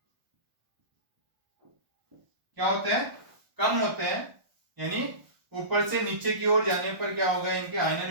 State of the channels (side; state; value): left; late; 1.1 ms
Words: क्या होते हैं, कम होते हैं। यानी ऊपर से नीचे की ओर जाने पर क्या होगा, इनके